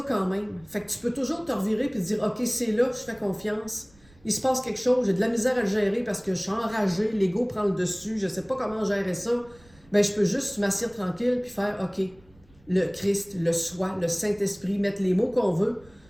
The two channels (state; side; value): noise; right; rumble, 28 dB below the sound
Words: quand même. Fait que tu peux toujours te revirer et te dire « Ok, c'est là, je fais confiance. Il se passe quelque chose, j'ai de la misère à le gérer parce que je suis enragé, l'ego prend le dessus, je ne sais pas comment gérer ça. » Ben je peux juste m'asseoir tranquille puis faire « Ok, le Christ, le soi, le Saint-Esprit, mettre les mots qu'on veut. »